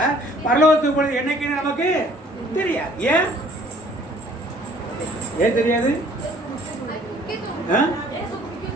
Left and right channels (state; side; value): normal; both; correlation 0.56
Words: பரலோகத்துக்கு போனது என்னைக்குன்னு நமக்கு தெரியாது. ஏன் ஏன் தெரியாது?